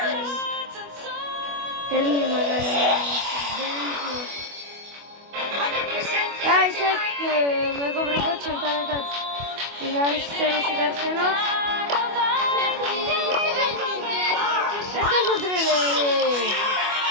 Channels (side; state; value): left; late; 25 ms